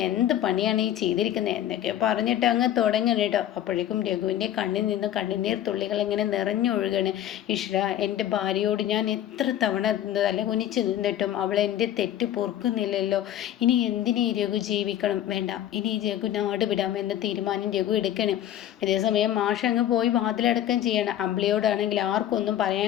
എന്ത് പണിയാണ് ഈ ചെയ്തിരിക്കുന്നത് എന്നൊക്കെ പറഞ്ഞിട്ട് അങ്ങ് തുടങ്ങണം കേട്ടോ. അപ്പോഴേക്കും രഘുവിൻ്റെ കണ്ണിൽ നിന്ന് കണ്ണുനീർ തുള്ളികൾ ഇങ്ങനെ നിറഞ്ഞൊഴുകണ്. ഈശ്വര, എൻ്റെ ഭാര്യയോട് ഞാൻ എത്ര തവണ തല കുനിച്ച് നിന്നിട്ടും അവൾ എൻ്റെ തെറ്റ് പൊറുക്കുന്നില്ലല്ലോ. ഇനി എന്തിനീ രഘു ജീവിക്കണം? വേണ്ട, ഇനി രഘു നാട് വിടാം എന്ന തീരുമാനം രഘു എടുക്കണം. അതേസമയം മാഷ് അങ്ങ് പോയി വാതിലടക്കം ചെയ്യണം. അമ്പിളിയോടാണെങ്കിൽ ആർക്കൊന്നും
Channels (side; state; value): right; quieter; 11.7 dB